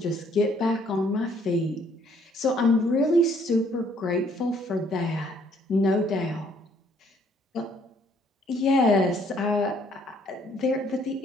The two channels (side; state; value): both; normal; correlation 0.64